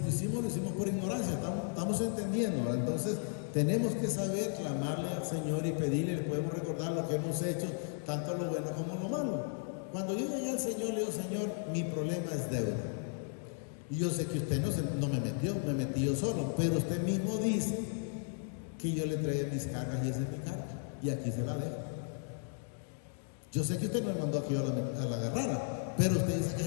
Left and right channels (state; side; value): silent; right; 54 dB below the other